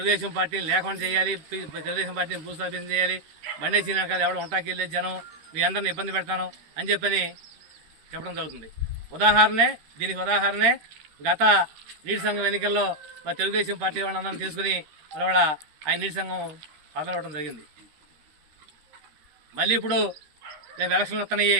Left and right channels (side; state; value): left; late; 13 ms